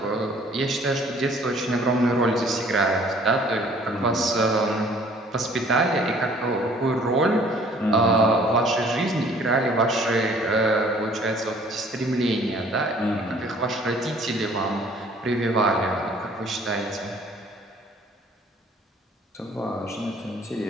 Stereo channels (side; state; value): both; normal; correlation 0.55